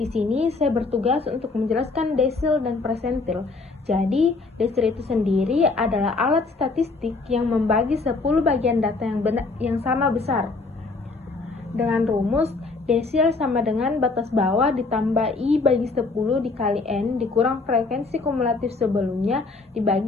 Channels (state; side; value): quieter; right; 3.8 dB